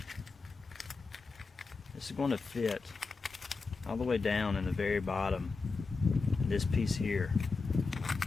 This is going to fit all the way down in the very bottom, this piece here.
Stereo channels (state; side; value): quieter; right; 4.3 dB